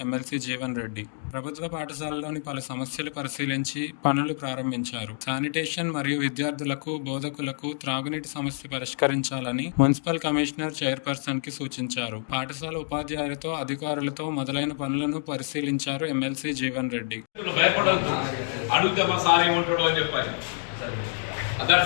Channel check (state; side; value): silent; right; digital silence